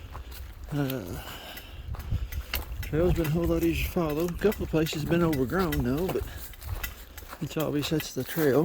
Trail's been a whole lot easier to follow. A couple of places been overgrown though, but it's obvious that's the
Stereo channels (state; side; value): identical; both; correlation 1.00